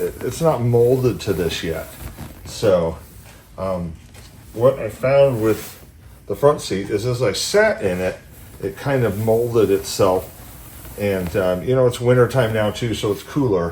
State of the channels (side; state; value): both; identical; correlation 1.00